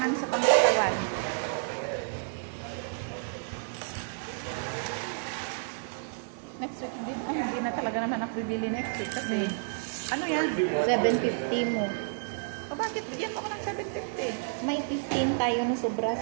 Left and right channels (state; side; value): silent; left; digital silence